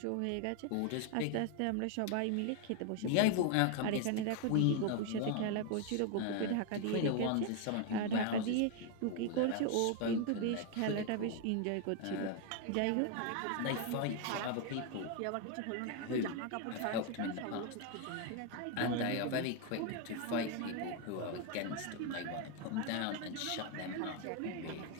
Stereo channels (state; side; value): different; both; correlation 0.01